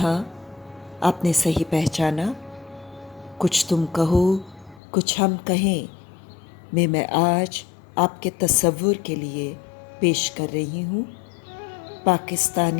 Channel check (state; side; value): drops out; right; at 4.8 s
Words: आपने सही पहचाना। कुछ तुम कहो कुछ हम कहें में मैं आज आपके तसव्वुर के लिए पेश कर रही हूँ